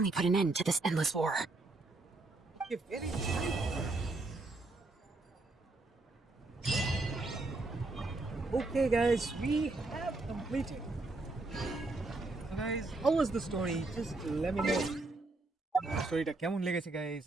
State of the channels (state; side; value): quieter; left; 3.2 dB